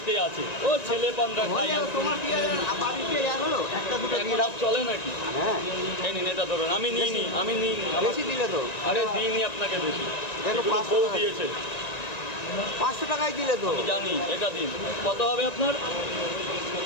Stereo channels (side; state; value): right; late; 1.9 ms